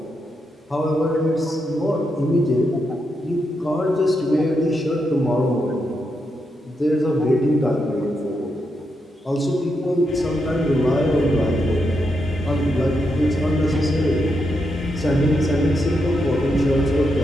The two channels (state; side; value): normal; both; correlation 0.83